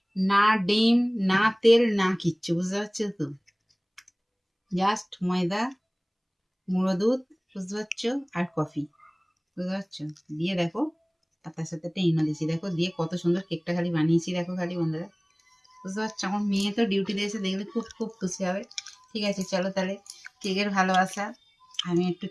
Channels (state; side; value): identical; both; correlation 1.00